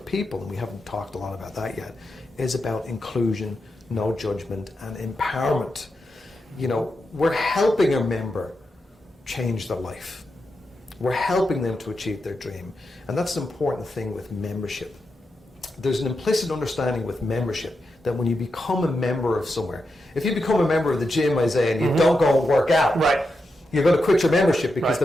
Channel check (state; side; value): normal; both; correlation 0.87